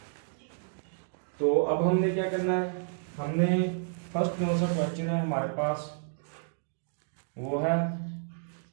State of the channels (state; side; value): silent; left; digital silence